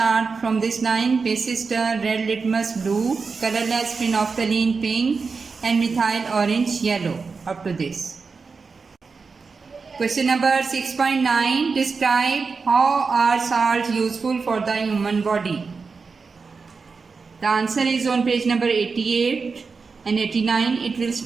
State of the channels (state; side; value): quieter; left; 4.8 dB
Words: from this line. Basis turn red litmus blue, colorless phenolphthalein pink and methyl orange yellow. Up to this. Question number 6.9. Describe how are salts useful for the human body. The answer is on page number 88 and 89. It will